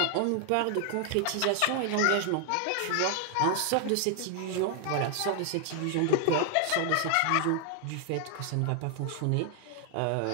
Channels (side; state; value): both; different; correlation 0.00